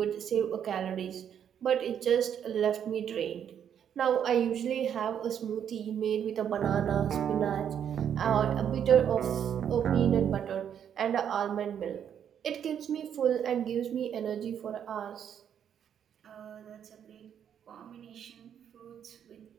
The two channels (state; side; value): quieter; left; 8.8 dB